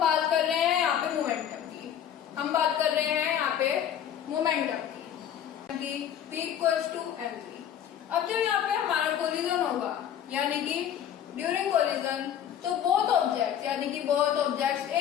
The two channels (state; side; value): quieter; right; 9.7 dB